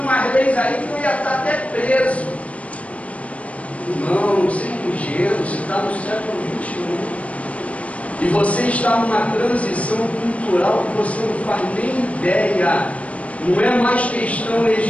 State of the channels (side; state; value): right; late; 0.065 ms